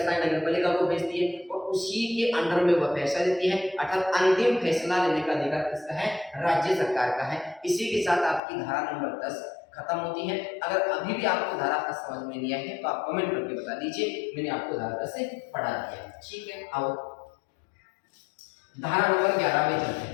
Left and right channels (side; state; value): right; drops out; at 8.4 s